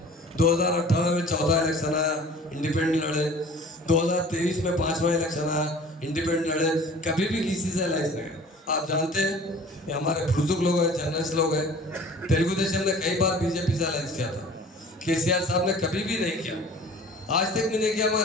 2018 में चौथा इलेक्शन आया इंडिपेंडेंट लड़े 2023 में 5वां इलेक्शन आया इंडिपेंडेंट लड़े कभी भी किसी से अलायंस नहीं आप जानते हैं ये हमारे बुजुर्ग लोग हैं जर्नलिस्ट लोग हैं तेलुगु देशम ने कई बार बीजेपी से अलायंस किया था केसीआर साहब ने कभी भी नहीं किया आज तक भी नहीं किया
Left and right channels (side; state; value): both; normal; correlation 0.46